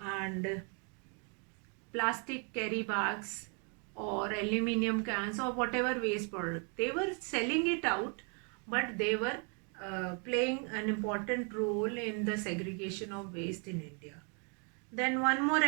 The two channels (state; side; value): quieter; left; 37.8 dB